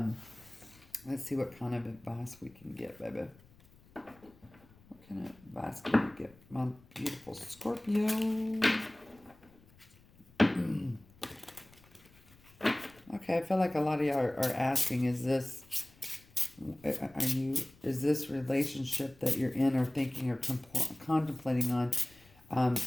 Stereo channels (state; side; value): noise; left; rumble, 27 dB below the sound